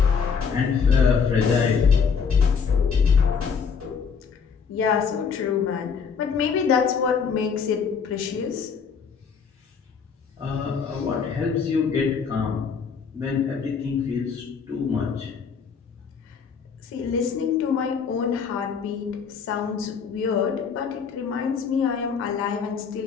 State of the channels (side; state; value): right; quieter; 6.1 dB